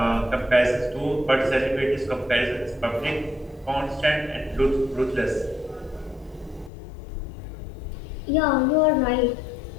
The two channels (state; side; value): drops out; right; at 6.7 s